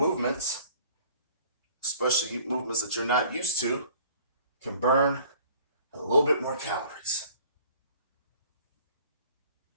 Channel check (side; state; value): both; inverted; correlation -0.52